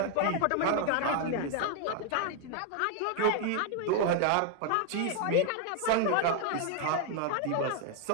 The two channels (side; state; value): both; different; correlation 0.00